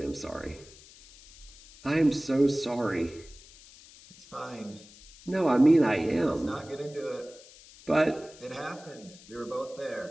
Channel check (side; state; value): left; noise; hiss, 21 dB below the sound